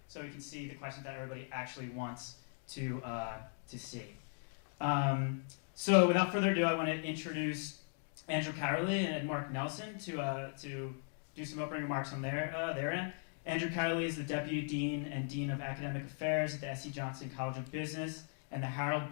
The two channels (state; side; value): silent; right; 52 dB below the other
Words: so we can see the questions that everybody actually wants to see. So without further ado, I want to introduce Andrew Carley and Mark Nelson to do some opening remarks on their end. Andrew Carley is the Deputy Dean and Dean of Academic Affairs at the S.C. Johnson College of Business and the Harold